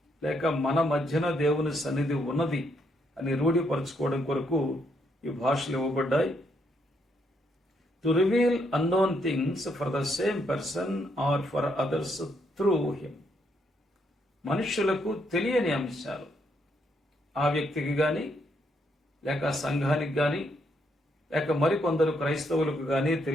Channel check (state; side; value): normal; both; correlation 0.75